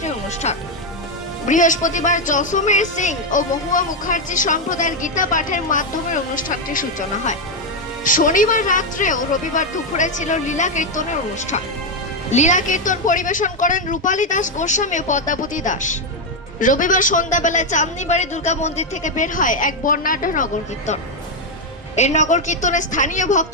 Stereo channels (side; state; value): both; normal; correlation 0.04